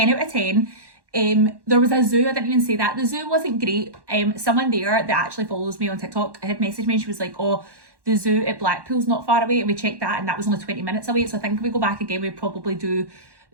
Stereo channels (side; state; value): left; late; 1.1 ms